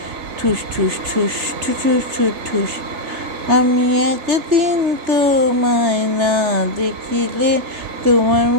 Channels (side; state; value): left; late; 3.3 ms